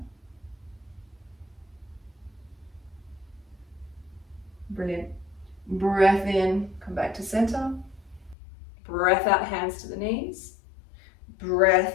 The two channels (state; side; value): drops out; right; at 8.3 s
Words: Brilliant. Breath in, come back to center. Breath out, hands to the knees.